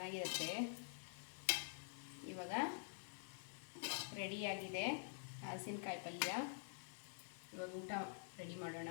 ಇವಾಗ ರೆಡಿಯಾಗಿದೆ ಹಲಸಿನಕಾಯಿ ಪಲ್ಯ. ಇವಾಗ ಊಟ ರೆಡಿ ಮಾಡೋಣ.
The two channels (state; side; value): silent; right; digital silence